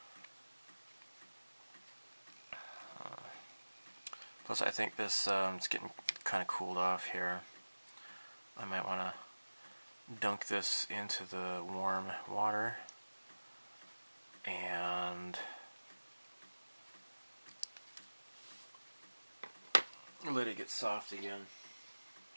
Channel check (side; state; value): both; inverted; correlation -1.00